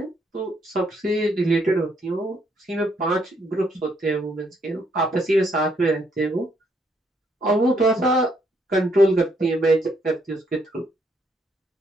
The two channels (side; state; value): both; normal; correlation 0.72